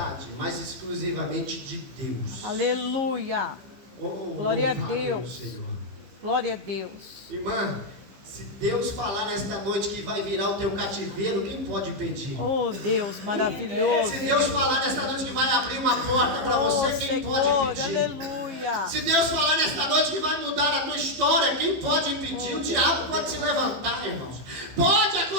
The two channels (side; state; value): left; late; 15 ms